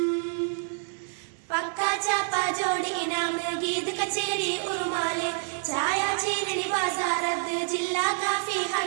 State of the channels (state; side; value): silent; left; 60 dB below the other